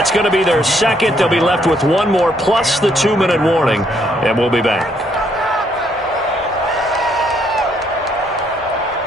going to be their 2nd. They'll be left with 1 more plus the 2-minute warning. And we'll be back.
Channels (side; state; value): both; normal; correlation 0.70